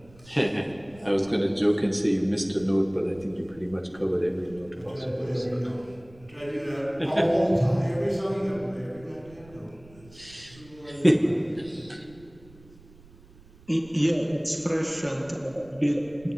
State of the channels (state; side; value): noise; right; rumble, 24 dB below the sound